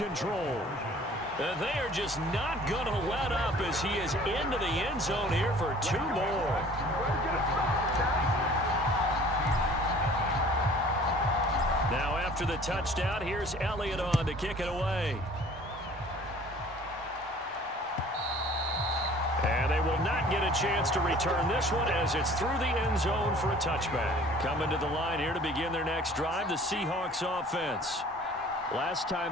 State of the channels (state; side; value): normal; both; correlation 0.50